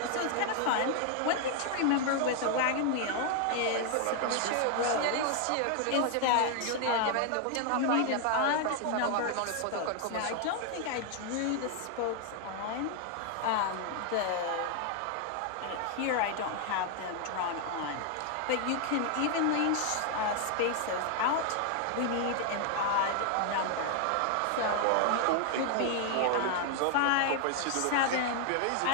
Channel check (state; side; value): different; both; correlation 0.00